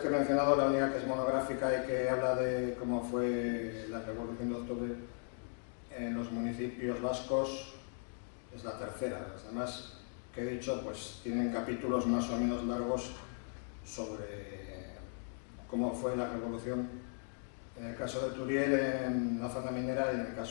he mencionado, la única que es monográfica y que habla de cómo fue la Revolución de Octubre en los municipios vascos es la tercera. Las demás que he dicho pues tienen capítulos más o menos largos sobre cómo fue la revolución en el caso de Turiel en la zona minera y en el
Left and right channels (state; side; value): silent; right; 53 dB below the other